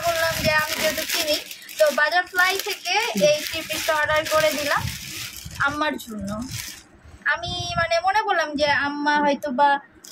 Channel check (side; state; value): both; identical; correlation 1.00